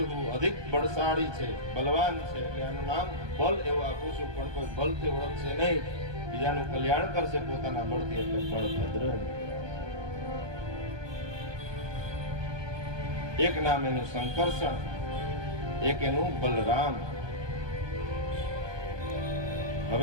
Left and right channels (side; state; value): left; late; 1.2 ms